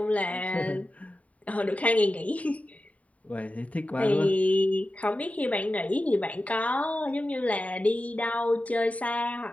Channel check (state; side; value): late; right; 0.068 ms